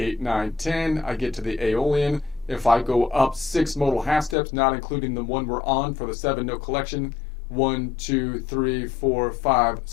9, 10, I get to the Aeolian. If I go up 6 modal half steps, not including the one we're on for the 7 note collection, 1, 2, 3, 4, 5,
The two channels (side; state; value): right; drops out; at 4.4 s